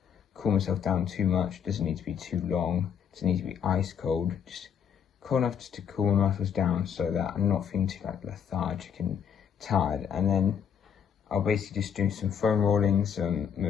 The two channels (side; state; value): right; quieter; 7.9 dB